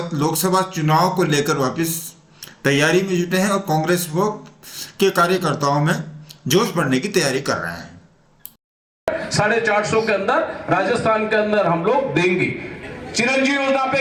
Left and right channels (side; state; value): both; identical; correlation 1.00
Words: लोकसभा चुनाव को लेकर वापस तैयारी में जुटे हैं और कांग्रेस वो के कार्यकर्ताओं में जोश बढ़ने की तैयारी कर रहे हैं। 450 के अंदर राजस्थान के अंदर हम लोग देंगे। चिरंजीवी योजना